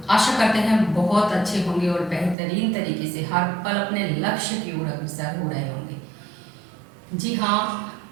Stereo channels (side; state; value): left; drops out; at 2.4 s